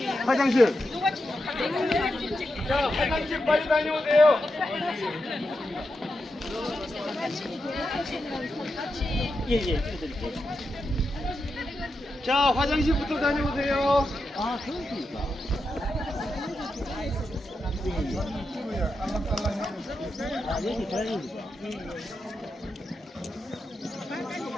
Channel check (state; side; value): normal; both; correlation 0.87